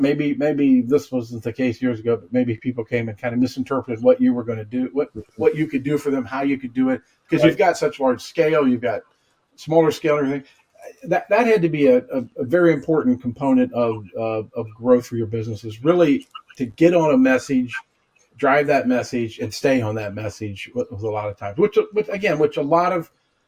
this wasn't the case years ago, but maybe people came and kind of misinterpreted what you were going to do, what you could do for them, how you could do it, because you've Right. got such large scale, you've got smaller scale and everything. That had to be a very important component of growth for your business, is really to get on a message, drive that message, and stay on that message with a lot of times, which a lot of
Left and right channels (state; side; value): identical; both; correlation 1.00